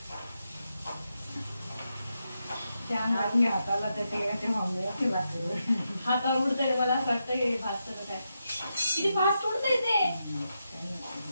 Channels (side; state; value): both; inverted; correlation -0.86